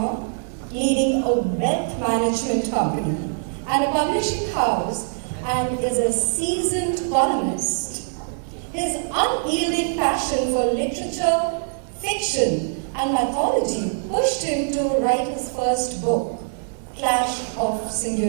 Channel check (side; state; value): left; silent; digital silence